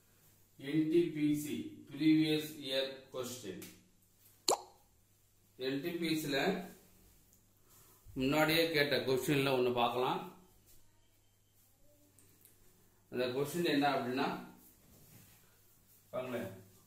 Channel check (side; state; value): both; identical; correlation 1.00